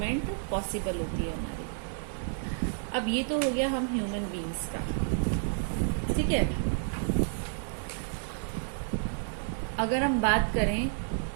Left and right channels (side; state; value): left; silent; digital silence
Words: पॉसिबल होती है हमारी। अब ये तो हो गया हम ह्यूमन बीइंग्स का, ठीक है। अगर हम बात करें